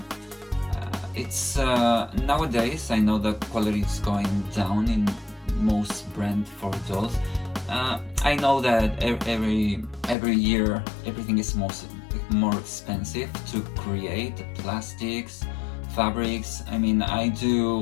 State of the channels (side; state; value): right; drops out; at 10.2 s